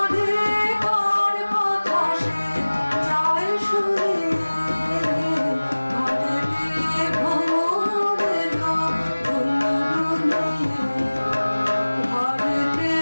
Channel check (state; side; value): inverted; both; correlation -1.00